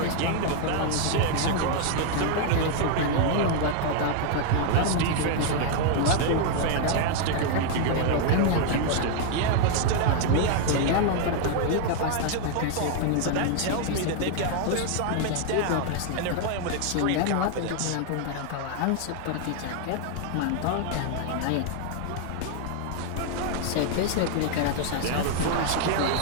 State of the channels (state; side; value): different; both; correlation 0.00